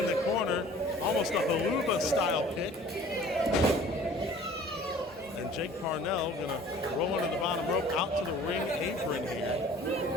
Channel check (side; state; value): both; normal; correlation 0.49